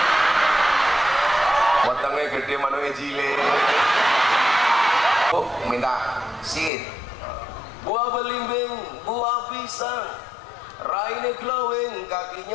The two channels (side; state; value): right; drops out; at 6.7 s